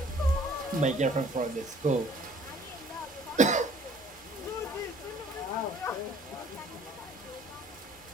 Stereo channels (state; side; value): normal; both; correlation 0.55